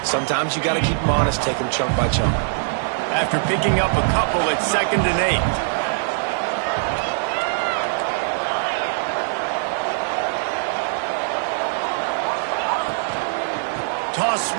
sometimes you got to keep them honest, take them chunk by chunk. After picking up a couple at 2nd and 8. Toss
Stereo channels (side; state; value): left; silent; digital silence